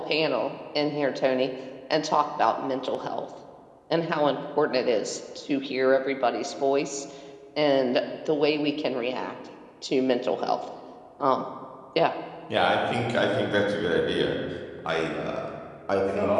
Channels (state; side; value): identical; both; correlation 1.00